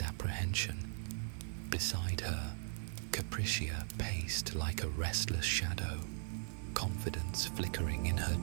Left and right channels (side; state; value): left; silent; digital silence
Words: apprehension. Beside her, Capricia paced like a restless shadow, confidence flickering in her